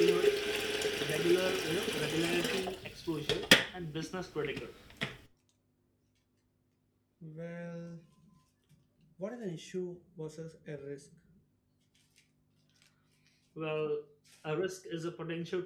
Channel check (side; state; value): both; identical; correlation 1.00